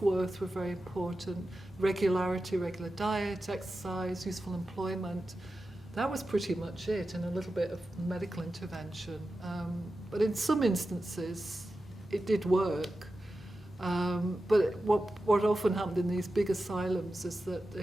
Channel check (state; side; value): normal; both; correlation 0.92